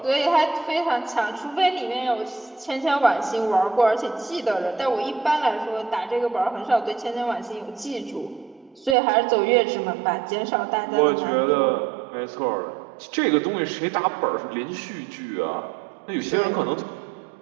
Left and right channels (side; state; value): left; drops out; at 9.0 s